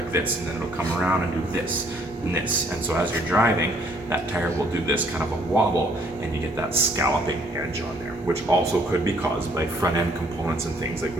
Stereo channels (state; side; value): normal; both; correlation 0.64